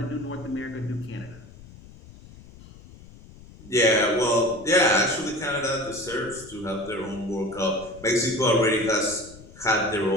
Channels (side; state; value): left; noise; rumble, 20 dB below the sound